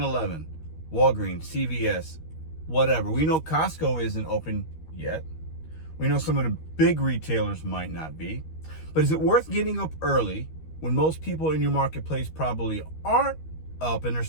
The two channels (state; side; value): late; right; 13 ms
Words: Walgreens, CVS, whatever. We know Costco isn't open yet. We know some of the big retailers might not be. But is it worth getting up early when most people in your marketplace probably aren't up and they're